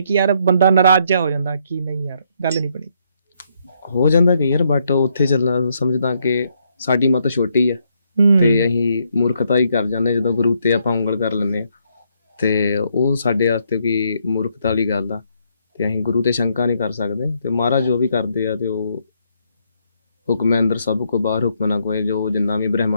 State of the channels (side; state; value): both; inverted; correlation -0.74